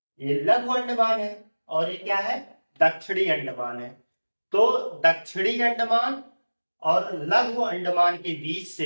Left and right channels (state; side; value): inverted; both; correlation -1.00